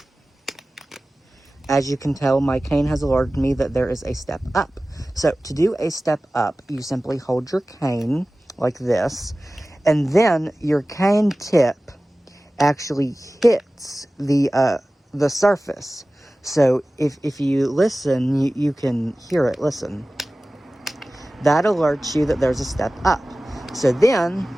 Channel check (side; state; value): both; normal; correlation 0.97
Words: As you can tell, my cane has alerted me that there is a step up. So to do a step up, you simply hold your cane like this, and then your cane tip actually hits the surface. So if you listen, you can hear it. Listen. That alerts you that there's a step up. So then